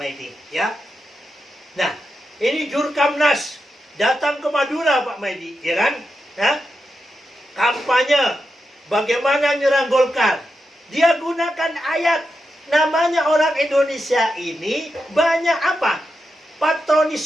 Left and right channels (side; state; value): both; normal; correlation 0.87